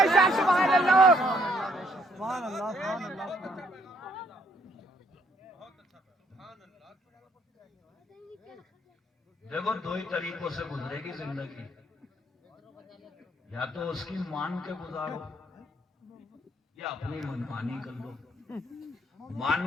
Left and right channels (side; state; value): both; normal; correlation 0.68